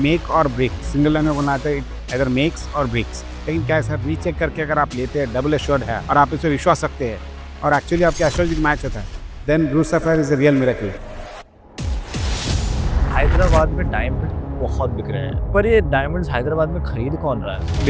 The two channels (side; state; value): both; identical; correlation 1.00